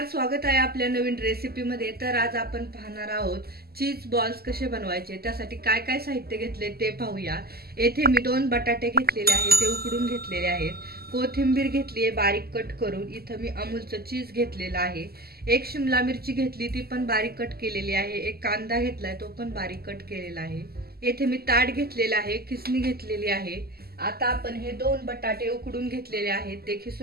स्वागत आहे आपल्या नवीन रेसिपी मध्ये। तर आज आपण पाहणार आहोत चीज बॉल्स कसे बनवायचे। त्यासाठी काय काय साहित्य घेतले ते पाहूया। येथे मी 2 बटाटे घेतलेले आहेत, ते उकडून घेतलेले आहेत। कोथिंबीर घेतली आहे बारीक कट करून। इथे मी अमूलचं चीज घेतलेला आहे। एक शिमला मिरची घेतली, ती पण बारीक कट केलेली आहे। एक कांदा घेतलाय, तो पण बारीक कट केलेला आहे। येथे मी ताट घेतलेला आहे, किसणी घेतलेली आहे। आता आपण हे 2 बटाटे उकडून घेतलेले आहेत, ते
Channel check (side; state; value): left; late; 0.45 ms